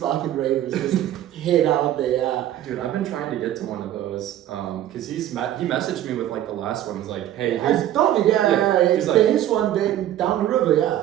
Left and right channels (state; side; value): quieter; left; 12.2 dB